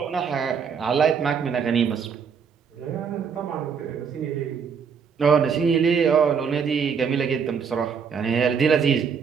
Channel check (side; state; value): left; quieter; 6.5 dB